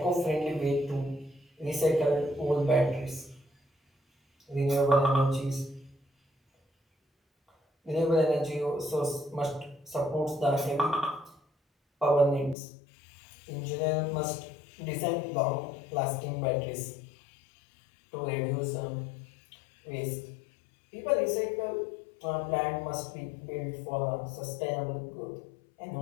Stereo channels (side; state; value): right; drops out; at 12.6 s